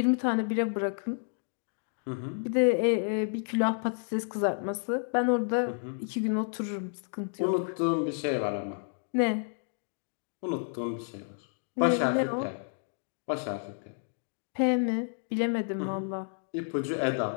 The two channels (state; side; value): silent; right; digital silence